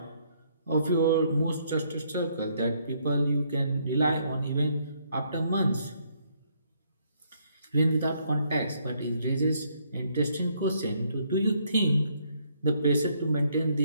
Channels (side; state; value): both; inverted; correlation -0.70